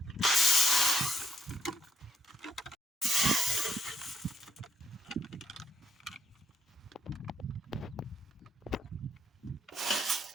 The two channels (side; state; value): both; normal; correlation 0.72